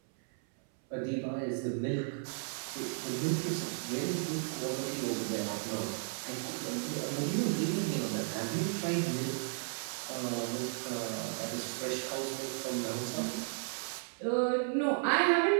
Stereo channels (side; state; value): left; silent; 55 dB below the other